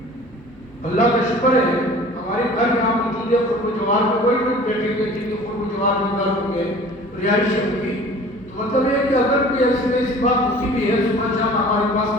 اللہ کا شکر ہے ہمارے گھر یہاں موجود ہے، خود جوار میں کوئی لوگ بیٹھے ہوئے جن کے خود جوار میں گھر ہوں گے، رہائش ہوگی، تو مطلب یہ کہ اگر کوئی ایسی بات ہوتی بھی ہے، صبح شام ہمارے پاس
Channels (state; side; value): normal; both; correlation 0.46